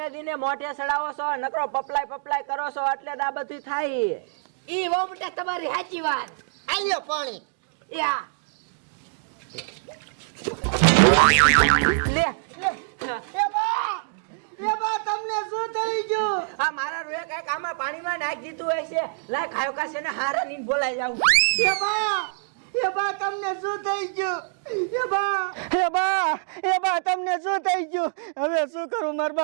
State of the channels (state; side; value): silent; left; digital silence